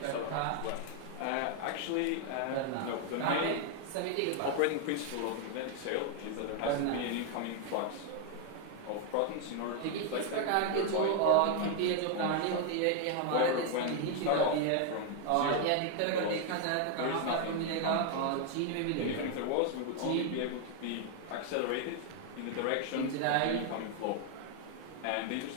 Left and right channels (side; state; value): both; different; correlation 0.00